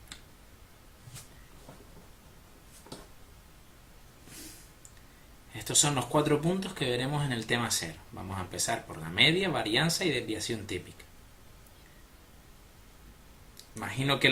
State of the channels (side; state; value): both; identical; correlation 1.00